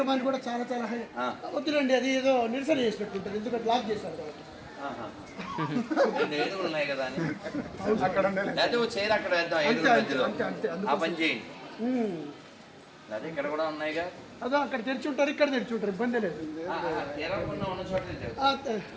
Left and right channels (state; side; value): identical; both; correlation 1.00